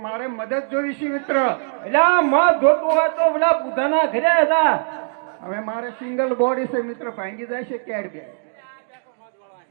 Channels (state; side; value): silent; left; digital silence